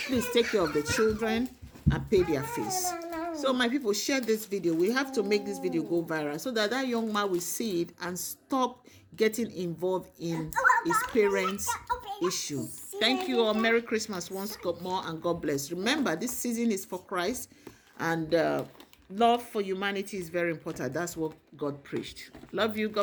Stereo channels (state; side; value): identical; both; correlation 1.00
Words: Please take care of the children and pay their fees. So my people, share this video. We have to make this video go viral so that that young man will see it and stop getting involved in his parents' issue. Thank you all. Merry Christmas once more, and God bless. Remember, this season is for Christ, and love for humanity is very important. That's what God preached. Love you.